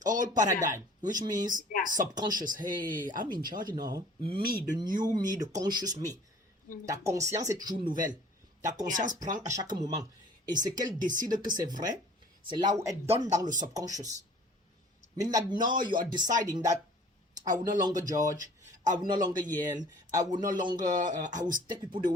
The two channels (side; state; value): both; normal; correlation 0.51